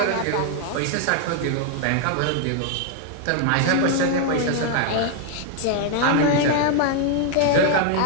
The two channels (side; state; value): both; different; correlation 0.00